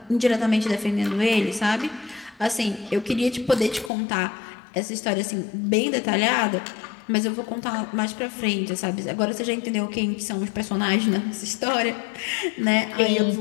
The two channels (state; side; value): drops out; right; at 3.9 s